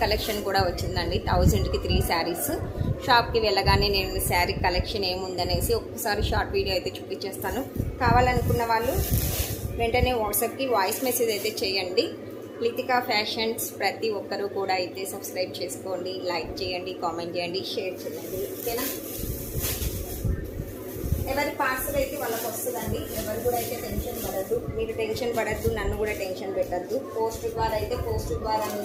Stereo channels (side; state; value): both; identical; correlation 1.00